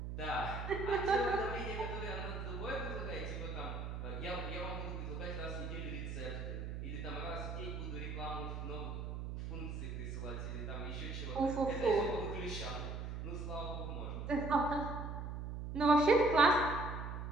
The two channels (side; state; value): right; noise; hum, 5 dB below the sound